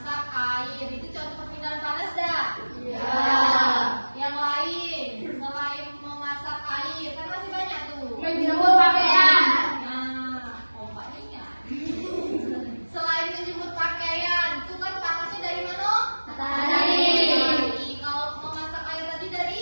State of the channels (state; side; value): inverted; both; correlation -1.00